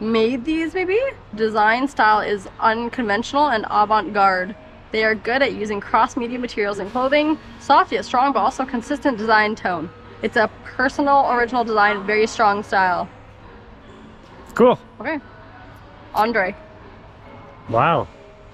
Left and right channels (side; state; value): both; identical; correlation 1.00